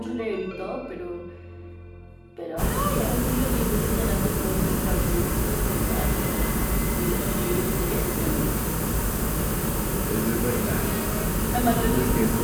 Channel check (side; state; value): both; identical; correlation 1.00